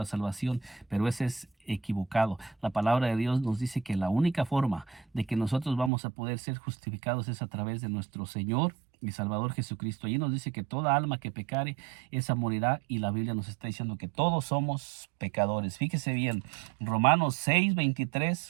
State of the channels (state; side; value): drops out; left; at 5.9 s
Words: salvación, pero ese es equivocado. La palabra de Dios nos dice que la única forma de que nosotros vamos a poder ser justificados es a través de nuestro Señor y Salvador Jesucristo. Allí nos dice que toda alma que pecare, esa morirá, y la Biblia nos está diciendo que todos somos pecadores. Fíjese bien, Romanos